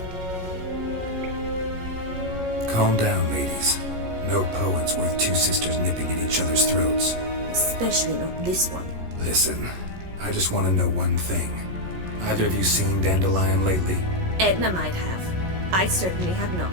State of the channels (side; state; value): left; late; 16 ms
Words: Calm down, ladies. No poet's worth two sisters nipping at each other's throats. Especially not this one. Listen, I just want to know one thing. Either of you seen Dandelion lately? Edna might have. I certainly have not.